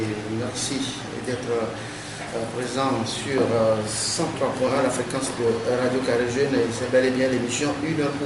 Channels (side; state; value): both; identical; correlation 1.00